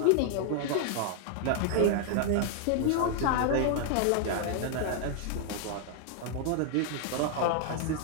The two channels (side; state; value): both; different; correlation 0.00